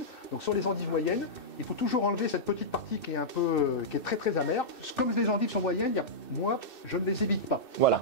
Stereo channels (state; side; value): late; right; 2.6 ms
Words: Donc, sur les endives moyennes, il faut toujours enlever cette petite partie qui est très amère. Comme les endives sont moyennes, moi, je ne les évite pas. Voilà.